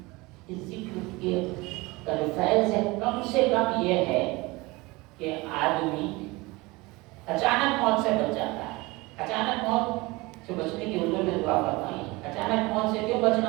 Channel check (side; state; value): left; quieter; 23.0 dB